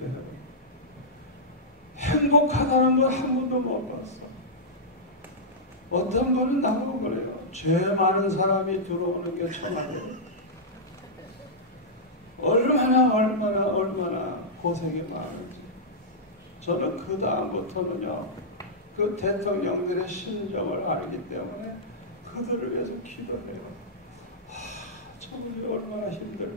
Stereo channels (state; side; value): normal; both; correlation -0.10